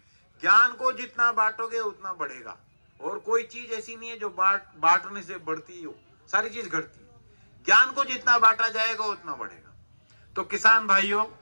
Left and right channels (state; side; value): inverted; both; correlation -1.00